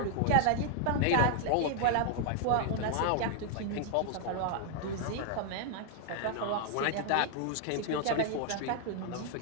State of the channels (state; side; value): different; both; correlation 0.00